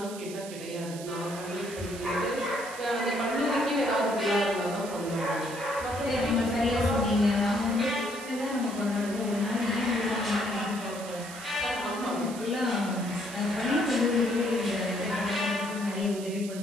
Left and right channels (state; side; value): noise; right; hiss, 14 dB below the sound